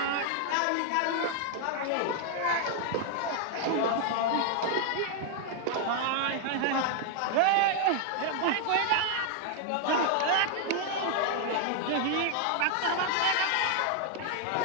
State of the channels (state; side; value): different; both; correlation 0.00